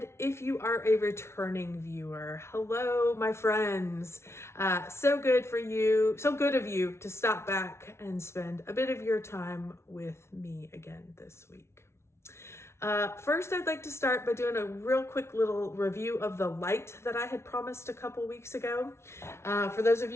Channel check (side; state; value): right; late; 0.13 ms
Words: if you are a returning viewer, hello, my friends. So good of you to stop back and spend a bit of your time with me again this week. First, I'd like to start by doing a real quick little review of the light that I had promised a couple weeks ago. For those of